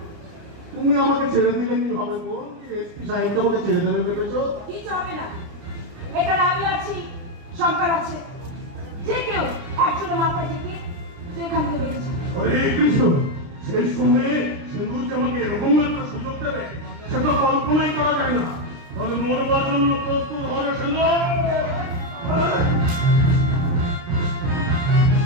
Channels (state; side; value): late; left; 30 ms